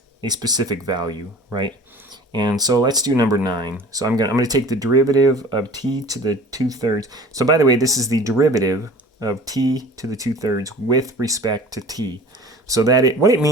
a specific value, right? And so let's do number 9. So I'm gonna take the derivative of t to the 2/3. So by the way, this is the derivative of t to the 2/3 with respect to t. So that what it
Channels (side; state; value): both; normal; correlation 0.43